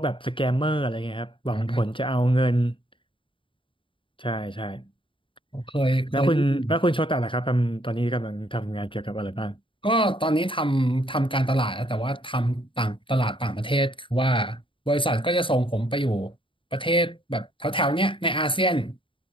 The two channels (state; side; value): late; right; 0.25 ms